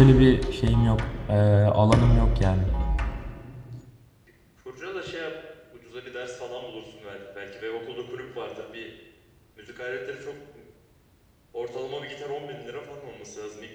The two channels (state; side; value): identical; both; correlation 1.00